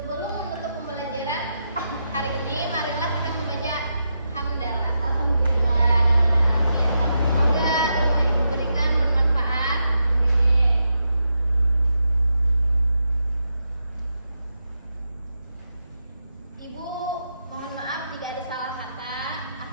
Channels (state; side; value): inverted; both; correlation -0.85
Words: menutup pembelajaran hari ini, marilah kita membaca hamdalah. Alhamdulillah. Semoga ilmu yang diberikan bermanfaat. Ibu, mohon maaf jika ada salah kata.